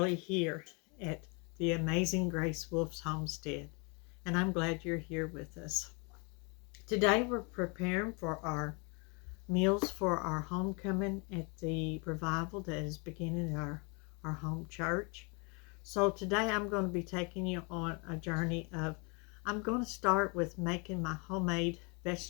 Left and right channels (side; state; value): right; quieter; 32.2 dB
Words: here at the Amazing Grace Wolf's homestead, and I'm glad you're here with us. Today we're preparing for our meals for our homecoming at the revival that is beginning at our home church. So today I'm going to be taking you on a journey of, I'm going to start with making my homemade